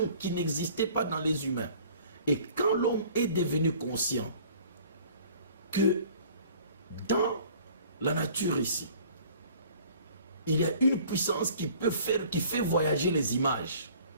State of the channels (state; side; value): inverted; both; correlation -0.51